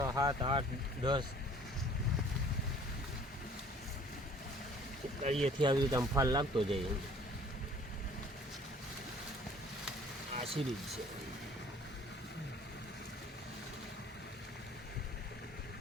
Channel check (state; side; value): normal; both; correlation 0.53